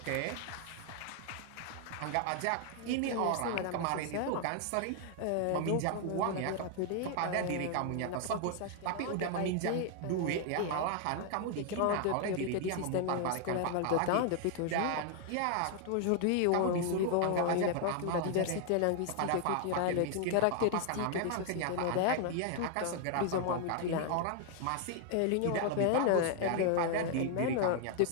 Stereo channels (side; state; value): both; different; correlation 0.00